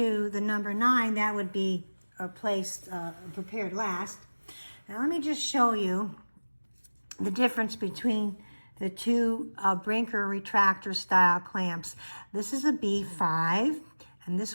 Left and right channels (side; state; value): both; inverted; correlation -1.00